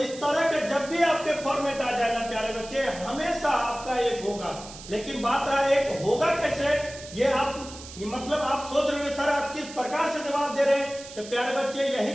तरह के जब भी आपके फॉर्मेट आ जाए ना प्यारे बच्चे, हमेशा आपका 1 होगा। लेकिन बात रहा 1 होगा कैसे, ये मतलब आप सोच रहे हैं सर आप किस प्रकार से जवाब दे रहे हैं। तो प्यारे बच्चे यही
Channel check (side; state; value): right; noise; hiss, 15 dB below the sound